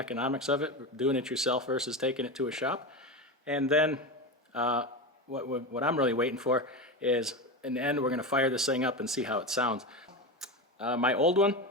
of it, doing it yourself versus taking it to a shop. And then what I'm really waiting for is, in the end, we're going to fire this thing up and see how it sounds. My old one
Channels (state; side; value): normal; both; correlation 0.20